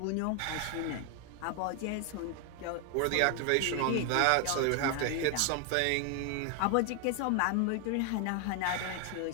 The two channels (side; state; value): both; different; correlation 0.00